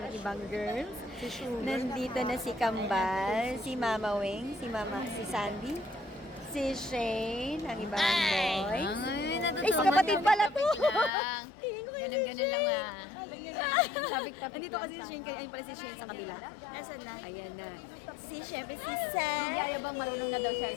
ibang girls. Nandito na si Kambal, si Mama Wing, si Sandy, si Shane, ang ibang boy. Ay, si kapatid pala to! Tingin ko yun si Shane. Sabik-tapik Nandito kasi si Shane, kaya ayun pala si Shane sa kabila. Ayan na. Syempre si Sam. Ayabang marunong na daw siya.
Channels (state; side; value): drops out; right; at 11.1 s